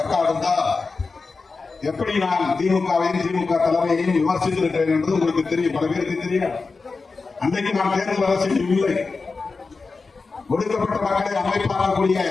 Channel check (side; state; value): right; quieter; 4.2 dB